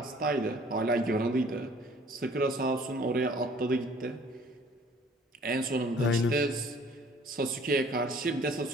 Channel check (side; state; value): both; normal; correlation 0.55